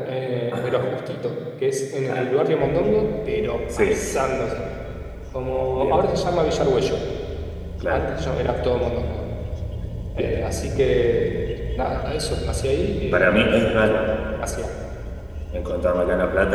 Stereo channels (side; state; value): both; identical; correlation 1.00